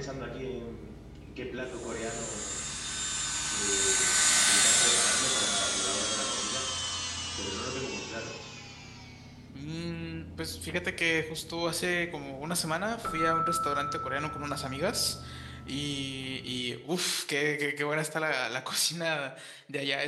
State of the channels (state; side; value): identical; both; correlation 1.00